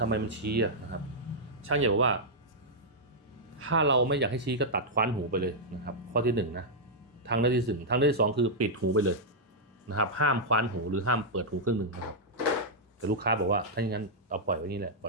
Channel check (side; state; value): both; normal; correlation -0.07